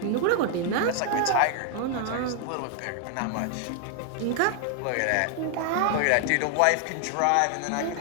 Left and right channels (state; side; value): different; both; correlation 0.00